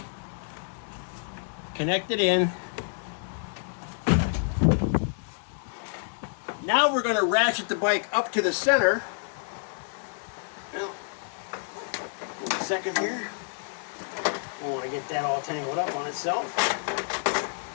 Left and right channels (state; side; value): silent; right; digital silence